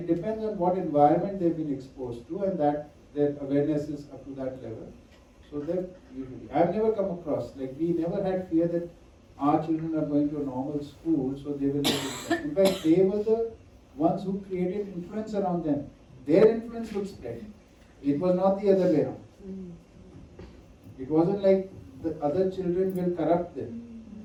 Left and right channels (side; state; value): both; identical; correlation 1.00